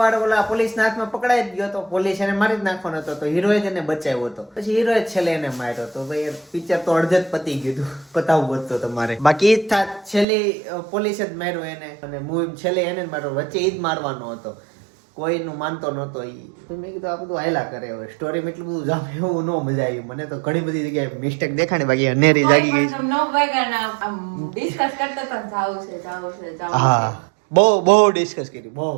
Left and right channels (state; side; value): drops out; left; at 10.2 s